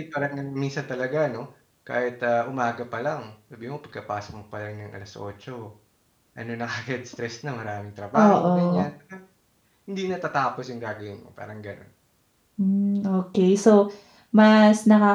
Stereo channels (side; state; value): both; identical; correlation 1.00